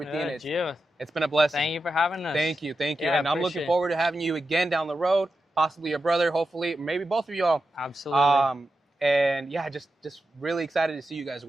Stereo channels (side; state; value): both; normal; correlation 0.90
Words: It's been a blessing. Thank you for having us. Thank you. Yeah, and I'm looking forward to having you again down the road. Possibly your brother, hopefully, maybe both of y'all. Absolutely. And yeah, just really excited to see you guys